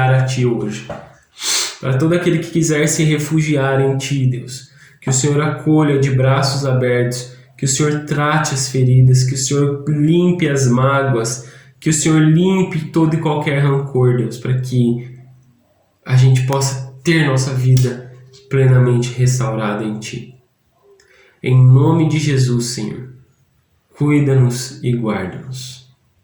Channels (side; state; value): both; identical; correlation 1.00